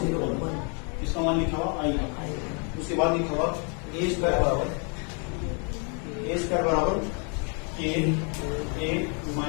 इसका मान लिखा हुआ आई का। उसके बाद लिखा हुआ ए स्क्वायर बराबर के ए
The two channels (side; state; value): right; quieter; 37.7 dB